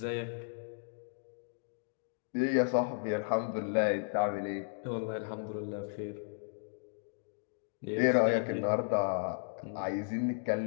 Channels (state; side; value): silent; right; digital silence